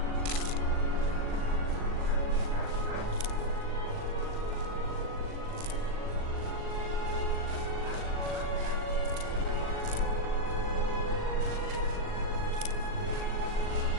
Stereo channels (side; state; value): left; late; 39 ms